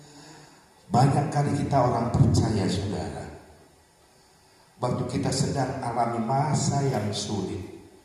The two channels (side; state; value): both; identical; correlation 1.00